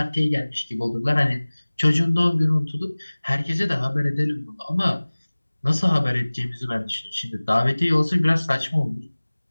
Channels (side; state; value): both; inverted; correlation -1.00